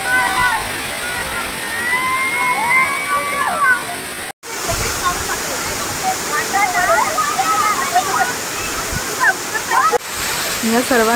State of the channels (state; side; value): identical; both; correlation 1.00